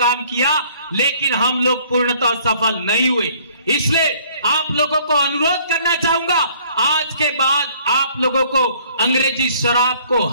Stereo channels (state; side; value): inverted; both; correlation -0.58